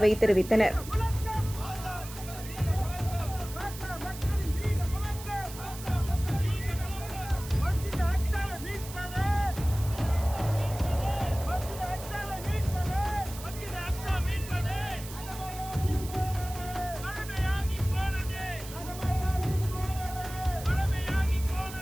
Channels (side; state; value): right; noise; hiss, 13 dB below the sound